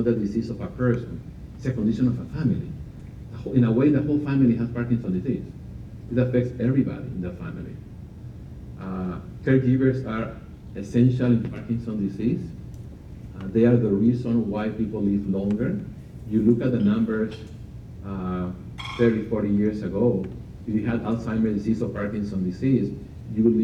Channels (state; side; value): identical; both; correlation 1.00